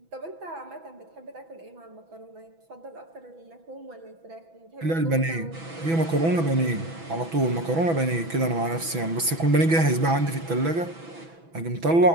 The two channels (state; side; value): late; left; 6.1 ms